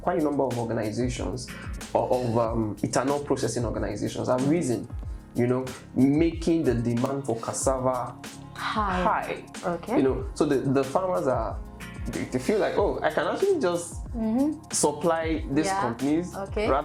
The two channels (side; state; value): both; identical; correlation 1.00